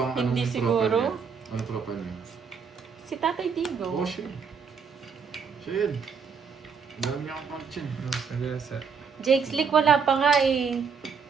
Hindi anong siguro. profile niya? Ano profile niya? Si Tatay Digong. Oh, siya. Siya yun. Ang dami niya akong pang-chin. Sagasa. Jake Slick wala pa nga eh.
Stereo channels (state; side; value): quieter; left; 6.0 dB